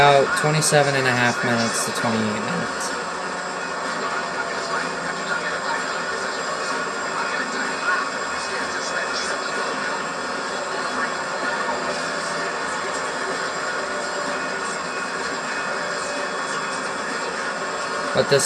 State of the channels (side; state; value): both; identical; correlation 1.00